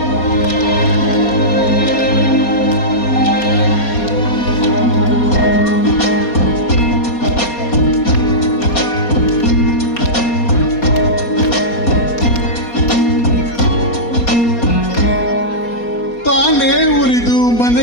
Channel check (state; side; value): late; right; 4.2 ms